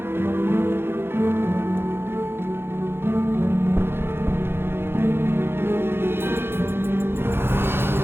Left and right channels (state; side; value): late; left; 0.11 ms